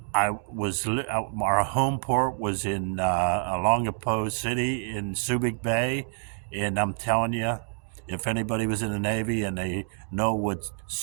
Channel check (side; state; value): left; silent; 60 dB below the other